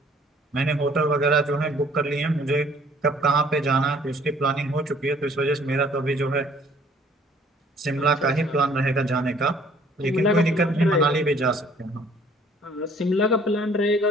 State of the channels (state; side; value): normal; both; correlation 0.57